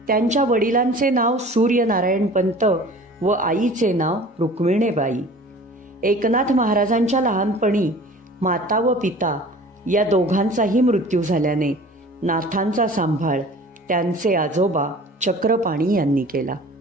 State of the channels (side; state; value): both; normal; correlation 0.44